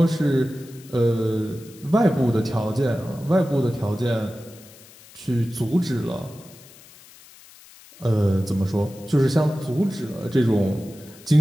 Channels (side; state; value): left; noise; hiss, 22 dB below the sound